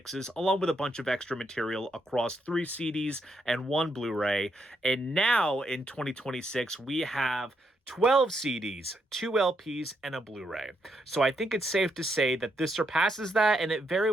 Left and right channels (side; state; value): both; normal; correlation 0.78